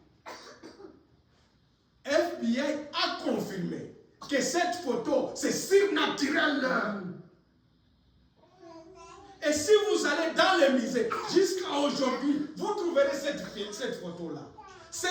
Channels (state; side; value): identical; both; correlation 1.00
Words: FBI a confirmé que cette photo, c'est surnaturel. Et si vous allez dans les musées, jusqu'à aujourd'hui, vous trouverez cette photo-là.